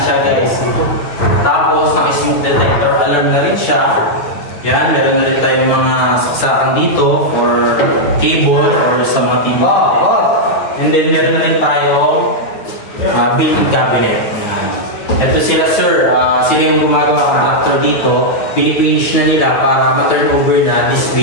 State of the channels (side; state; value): right; late; 9.2 ms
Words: siya guys. Tapos naka-smoke detector alarm na rin siya. Yan, meron na rin tayong mga saksakan dito for cable or sa mga TV. And then meron na rin tayong built-in cabinet. Ito sila sir, sila yung gumagawa ng contractor dito. Pinipinish na nila para ma-turn over na this